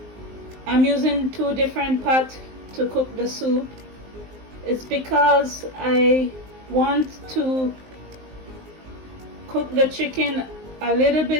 using 2 different pots to cook the soup is because I want to cook the chicken a little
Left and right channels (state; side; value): late; left; 19 ms